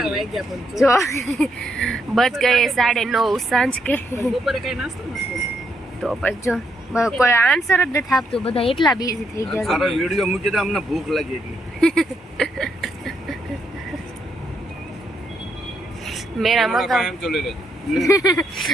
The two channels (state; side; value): normal; both; correlation 0.76